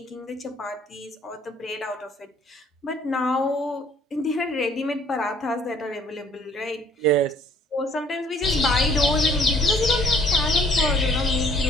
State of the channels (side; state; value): both; normal; correlation 0.59